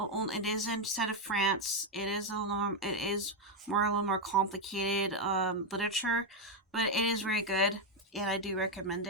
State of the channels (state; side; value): normal; both; correlation 0.04